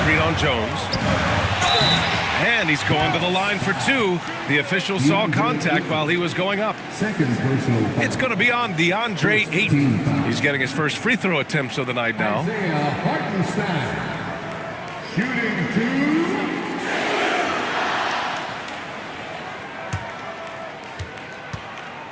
on Jones. And he's going to the line for 2. The official saw contact while he was going up. It's going to be on DeAndre Ayton. He's getting his first free throw attempts of the night now. Isaiah Hartenstein. Shooting 2.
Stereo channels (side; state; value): both; identical; correlation 1.00